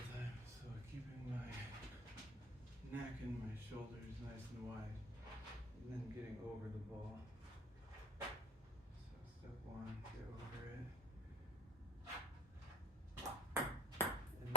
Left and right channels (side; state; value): both; normal; correlation 0.31